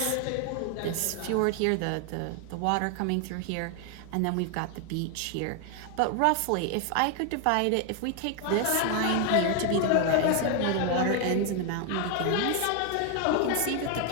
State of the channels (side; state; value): both; different; correlation 0.01